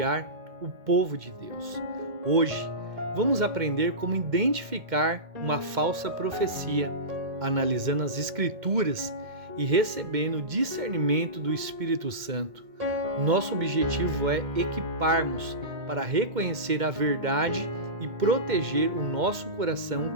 o povo de Deus. Hoje, vamos aprender como identificar uma falsa profecia, analisando as Escrituras e recebendo o discernimento do Espírito Santo. Nosso objetivo é equiparmos para reconhecer a verdade e proteger o nosso coração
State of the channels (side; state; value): left; late; 2.1 ms